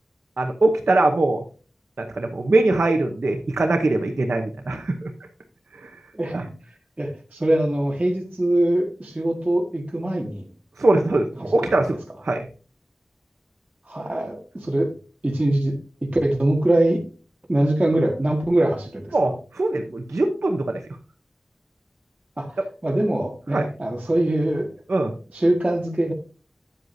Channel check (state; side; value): normal; both; correlation 0.96